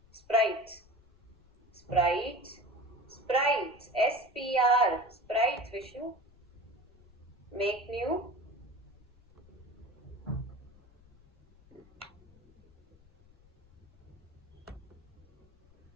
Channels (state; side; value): noise; left; rumble, 27 dB below the sound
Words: sprites, sprites, sprites, SPR, sprites Vishnu, make new,